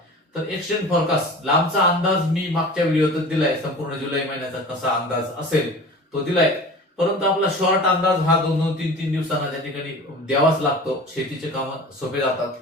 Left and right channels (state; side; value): normal; both; correlation 0.38